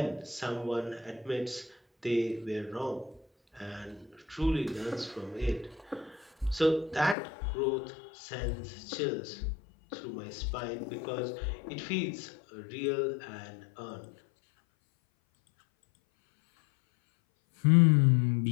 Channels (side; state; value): right; drops out; at 7.2 s